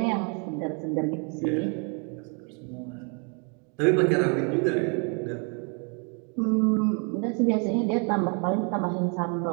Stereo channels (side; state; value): left; quieter; 36.9 dB